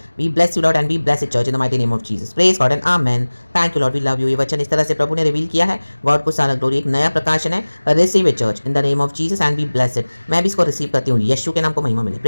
we bless you Lord and we bless it church in the mighty name of Jesus, praise God and amen. Thank you Lord, we love you. ये वचन इस तरह से प्रभु ने रिवील किया है, गॉड को सारा ग्लोरी, एक नया प्रकाशन है, receive it church in the name of Jesus and we bless it. मैं भी इसको रिसीव करती हूँ, यीशु के नाम को महिमा मिले,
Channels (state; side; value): inverted; both; correlation -1.00